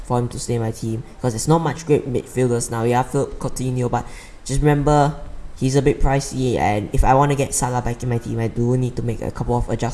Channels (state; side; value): identical; both; correlation 1.00